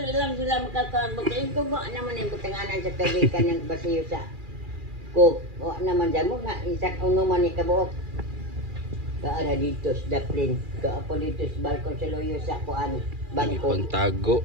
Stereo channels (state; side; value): late; left; 2.4 ms